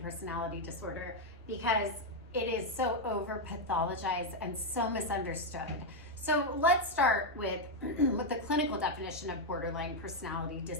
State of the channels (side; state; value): both; normal; correlation 0.02